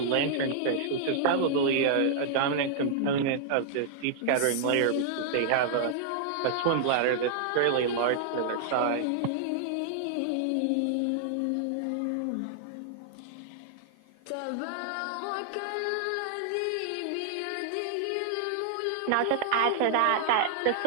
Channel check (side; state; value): both; different; correlation -0.01